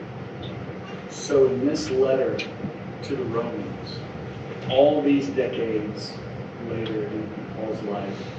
So in this letter to the Romans, all these decades later in Paul's life,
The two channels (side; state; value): both; identical; correlation 1.00